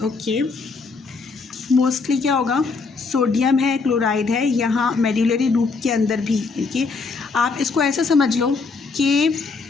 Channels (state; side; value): quieter; right; 4.4 dB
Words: Okay, mostly क्या होगा, sodium है, chloride है, यहाँ medullary loop के अंदर भी। देखिए आप इसको ऐसा समझ लो कि